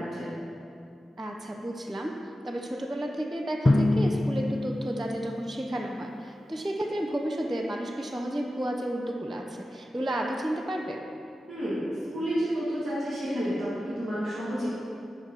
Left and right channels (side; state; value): both; normal; correlation 0.93